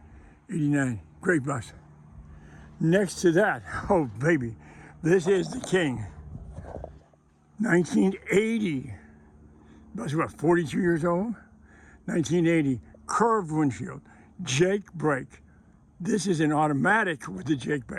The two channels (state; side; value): identical; both; correlation 1.00